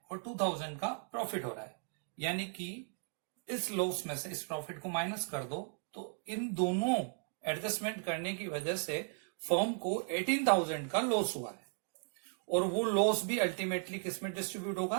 और 2,000 का प्रॉफिट हो रहा है, यानी कि इस लॉस में से इस प्रॉफिट को माइनस कर दो, तो इन दोनों एडजस्टमेंट करने की वजह से फर्म को 18,000 का लॉस हुआ है, और वो लॉस भी अल्टीमेटली किस में डिस्ट्रीब्यूट होगा?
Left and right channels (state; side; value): silent; left; 54 dB below the other